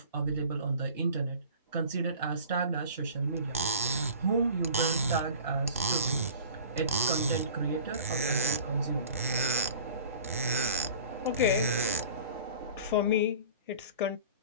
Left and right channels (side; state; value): both; inverted; correlation -0.41